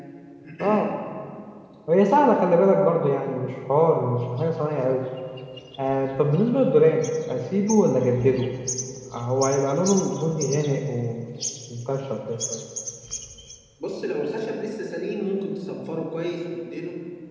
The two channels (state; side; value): identical; both; correlation 1.00